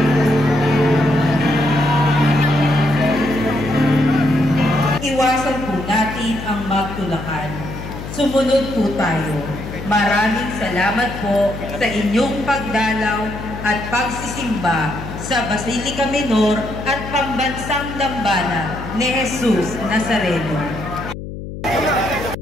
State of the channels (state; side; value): noise; left; hum, 9 dB below the sound